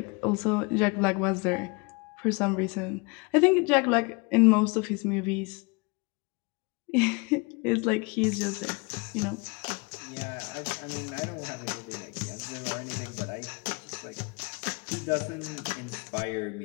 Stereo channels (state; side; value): quieter; right; 29.5 dB